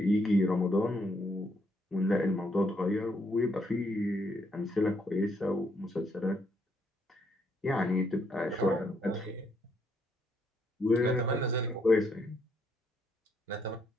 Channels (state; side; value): normal; both; correlation 0.73